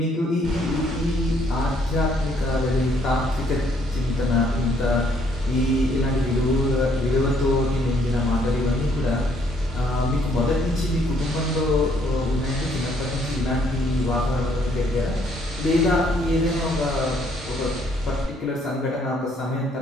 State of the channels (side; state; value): both; normal; correlation 0.67